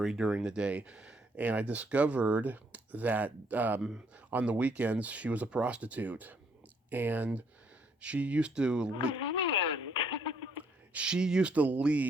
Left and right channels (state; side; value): normal; both; correlation 0.68